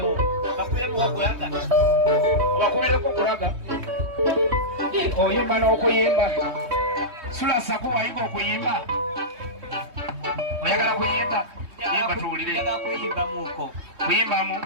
bakubireko okulaga obakubireko okulaga oyimba n'okuyimba sula saku wayiga okuyimba oyagala kuyimba yimba tuwulire kuyimbamuko kuyimbamu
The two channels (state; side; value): late; left; 3.2 ms